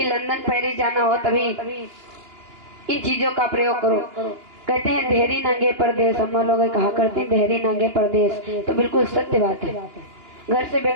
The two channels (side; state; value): left; late; 2.9 ms